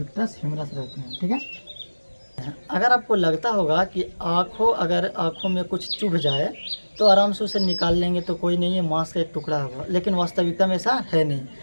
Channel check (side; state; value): both; inverted; correlation -1.00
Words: ह्यूमरस रहते हैं। ठीक है। अगर आपको लगता होगा कि अगर आँखों में कुछ चुभ जाए तो आराम से उसे निकाल लेंगे तो कोई नहीं है, मांस का एक टुकड़ा होगा, लेकिन वास्तविकता में ऐसा है नहीं।